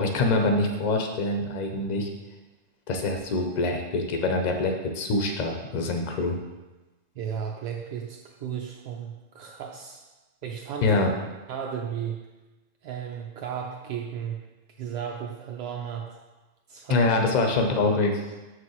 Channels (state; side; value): late; right; 2.0 ms